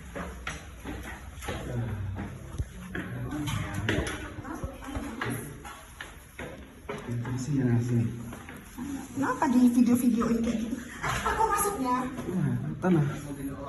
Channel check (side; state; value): both; identical; correlation 1.00